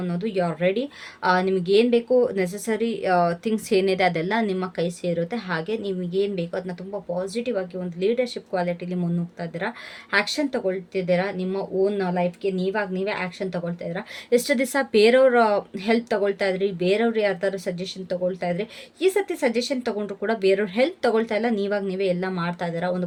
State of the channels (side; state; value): both; identical; correlation 1.00